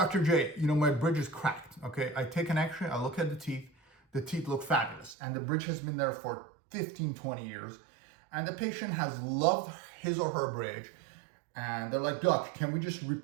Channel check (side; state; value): left; drops out; at 5.2 s